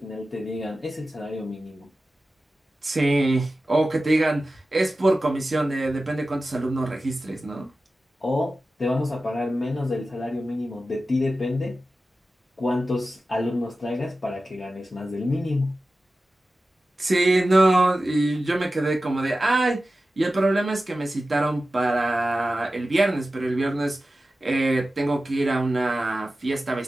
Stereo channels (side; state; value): both; normal; correlation 0.94